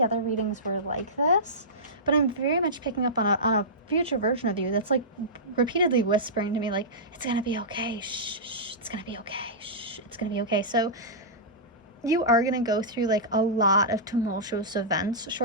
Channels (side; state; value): both; normal; correlation -0.16